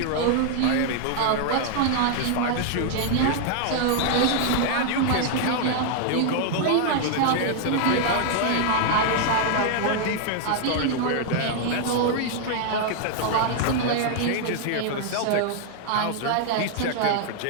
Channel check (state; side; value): different; both; correlation 0.00